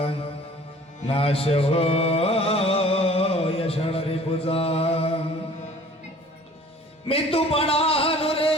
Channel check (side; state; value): both; normal; correlation 0.49